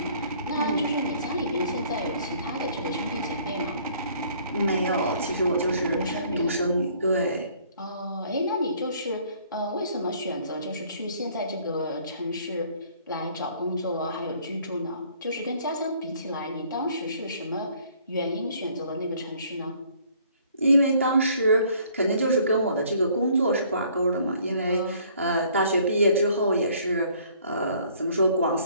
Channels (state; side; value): inverted; both; correlation -0.59